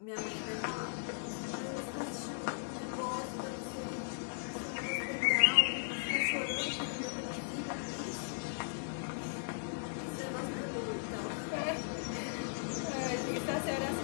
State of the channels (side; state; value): right; silent; digital silence